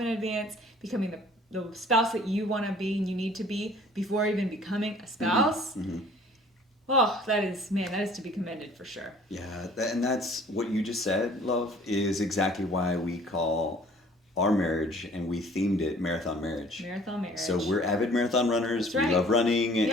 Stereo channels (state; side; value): normal; both; correlation 0.53